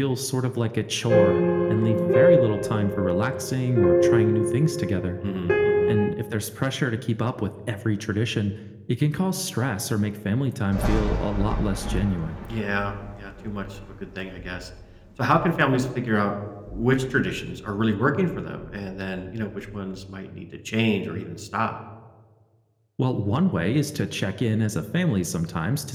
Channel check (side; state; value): both; identical; correlation 1.00